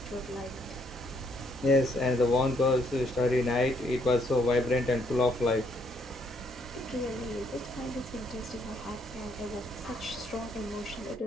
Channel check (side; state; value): both; normal; correlation 0.70